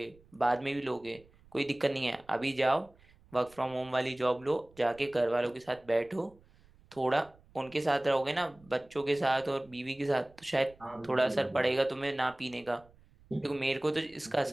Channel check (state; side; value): noise; right; rumble, 27 dB below the sound